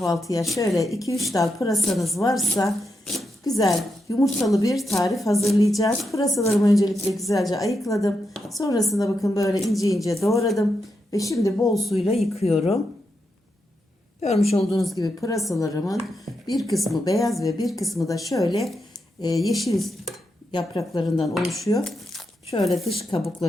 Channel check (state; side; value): normal; both; correlation 0.85